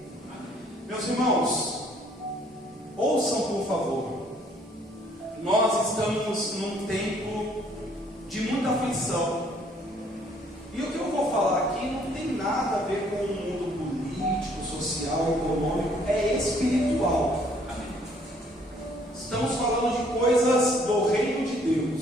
Meus irmãos, ouçam por favor. Nós estamos num tempo de muita aflição. E o que eu vou falar aqui não tem nada a ver com o mundo político, social, econômico, é espiritual. Estamos falando de coisas do reino de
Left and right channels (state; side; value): normal; both; correlation 0.62